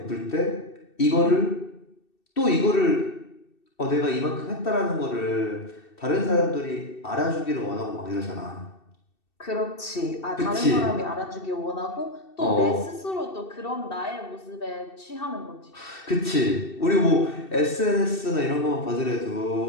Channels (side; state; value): right; late; 2.7 ms